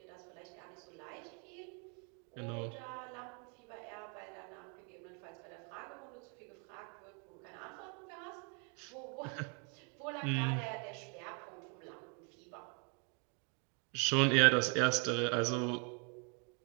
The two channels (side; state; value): left; quieter; 37.4 dB